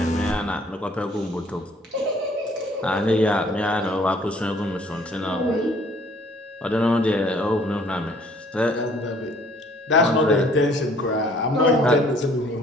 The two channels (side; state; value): both; normal; correlation 0.58